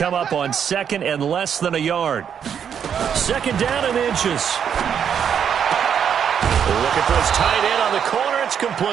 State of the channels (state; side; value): quieter; left; 8.0 dB